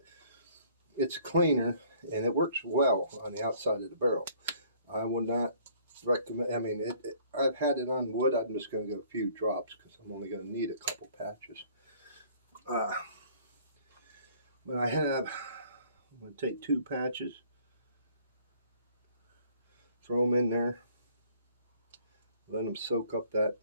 it's cleaner and it works well on the outside of the barrel. I would not recommend. I mean, I've had it on wood. I'm just going to get a few drops because I'm only going to need a couple patches. But I'm going to take 2 patches, throw them in there, let them soak up that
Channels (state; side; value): inverted; both; correlation -0.57